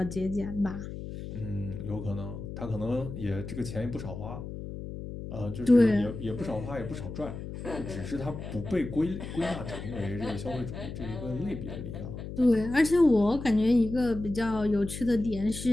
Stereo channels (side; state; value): left; noise; hum, 9 dB below the sound